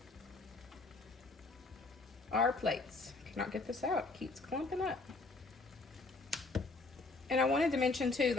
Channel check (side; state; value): right; quieter; 3.5 dB